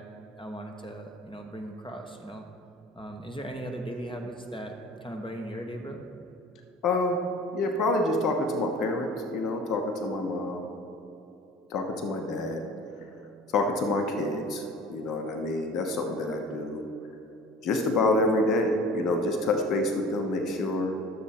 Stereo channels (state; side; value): normal; both; correlation 0.43